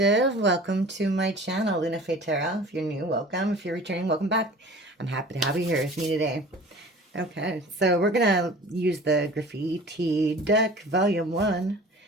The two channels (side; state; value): both; normal; correlation 0.43